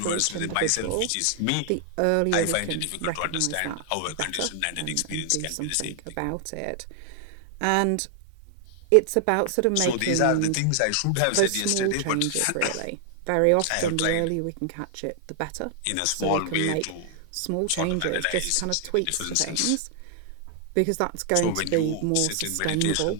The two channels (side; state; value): both; different; correlation 0.00